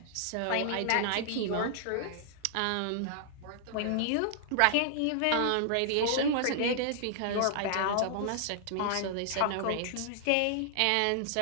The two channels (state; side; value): different; both; correlation -0.01